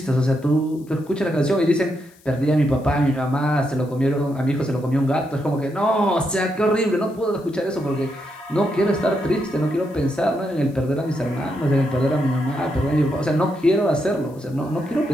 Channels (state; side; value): noise; left; hiss, 29 dB below the sound